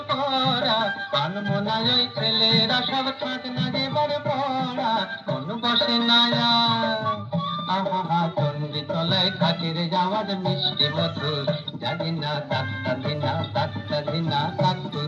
করা, আনমনায় ওই ছেলেরা সব থাক না যেবার পড়া, মন বসে না আর আহা চন্ডী তলায় খাটের যাওয়ার মিষ্টি মধুর, জানি না তাকটা দিনা তাকটা দিনা তাক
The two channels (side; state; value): both; identical; correlation 1.00